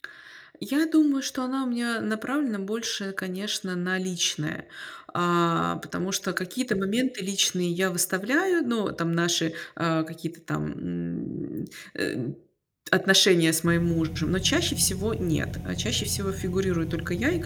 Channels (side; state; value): both; identical; correlation 1.00